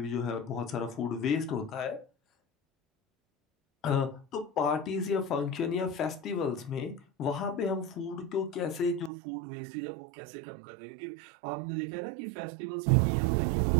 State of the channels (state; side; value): drops out; left; at 9.1 s